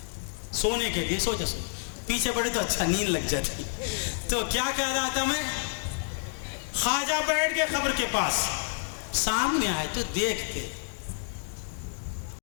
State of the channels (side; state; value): right; silent; digital silence